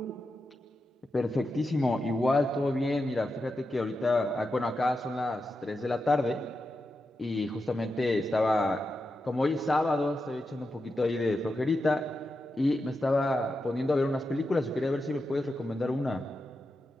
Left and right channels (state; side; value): normal; both; correlation 0.88